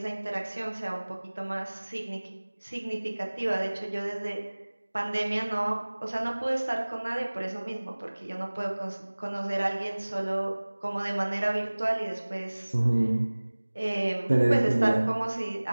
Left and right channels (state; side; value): inverted; both; correlation -1.00